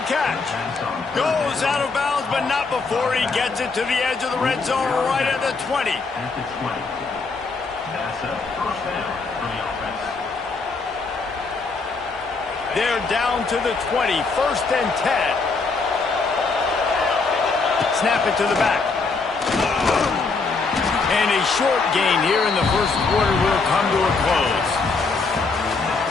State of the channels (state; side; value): quieter; right; 4.2 dB